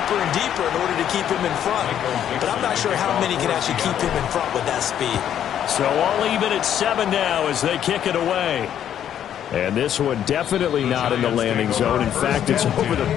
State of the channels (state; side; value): quieter; right; 10.0 dB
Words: and deeper in order to keep him in front. But I'm not sure how many can actually keep him in front with that speed. So all even at 7 now as they kick it away. And this one definitely not in the landing zone. In fact, it's over the